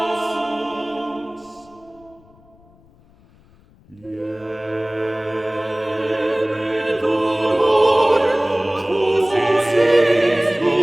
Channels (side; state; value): left; noise; rumble, 29 dB below the sound